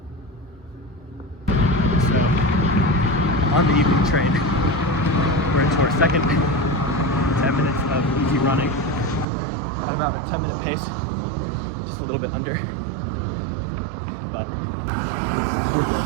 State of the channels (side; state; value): left; drops out; at 9.2 s